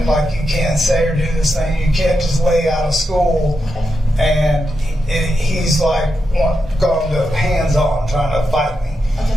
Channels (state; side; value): normal; both; correlation 0.87